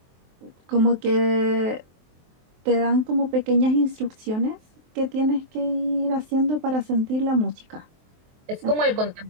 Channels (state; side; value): late; left; 23 ms